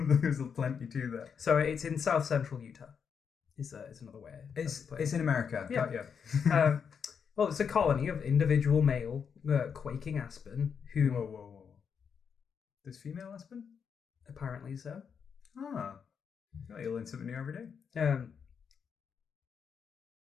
plenty to that. So it's in south central Utah. Is another way. It's in America. Yeah. Well, it's a colony of individual male quaking aspen who. Whoa. There's female aspen? Apparently so. Ah. Oh, you learn something new every day. Damn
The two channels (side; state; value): right; quieter; 6.7 dB